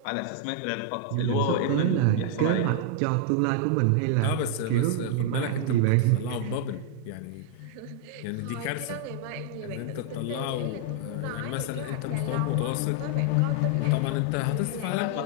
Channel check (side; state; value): both; different; correlation 0.00